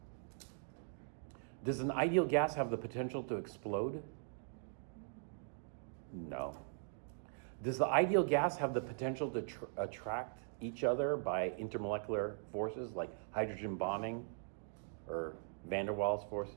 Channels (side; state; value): left; silent; digital silence